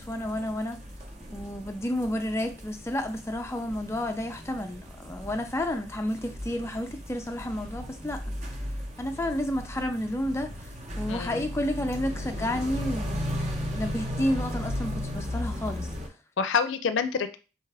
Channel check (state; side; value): normal; both; correlation 0.72